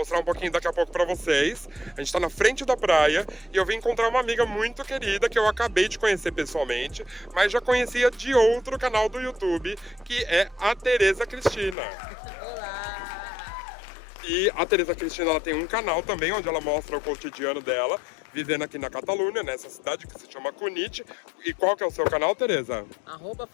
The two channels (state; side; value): drops out; right; at 11.8 s